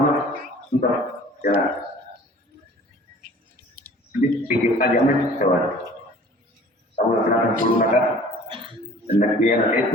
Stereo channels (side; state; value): both; normal; correlation 0.48